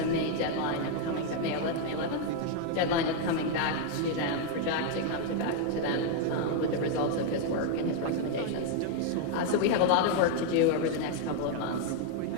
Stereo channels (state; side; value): different; both; correlation 0.00